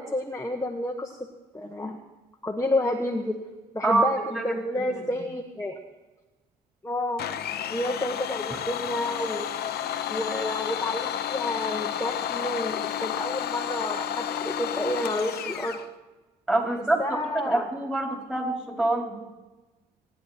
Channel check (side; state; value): both; normal; correlation 0.59